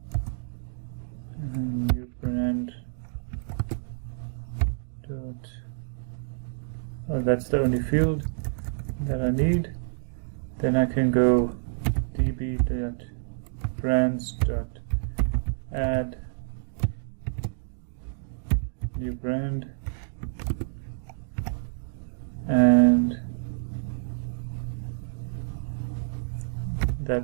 and new brand dot that's the only field that I need. Then I can go db.brands.add new brand, and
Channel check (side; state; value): left; silent; digital silence